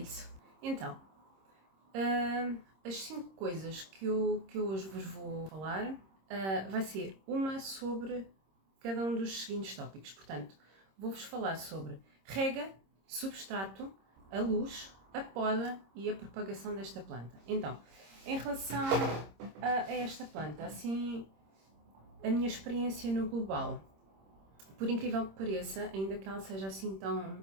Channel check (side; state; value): left; late; 26 ms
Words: Então, as 5 coisas que eu hoje vos vou falar vai ser uma sobre cada um dos seguintes tópicos. Portanto, vou-vos falar sobre rega, substrato, a luz, a poda e a propagação desta planta. Então, em relação a esta planta, assim, a minha experiência no global, por incrível que pareça, ainda que ela seja assim